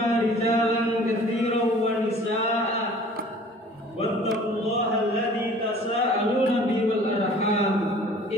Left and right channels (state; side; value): normal; both; correlation 0.49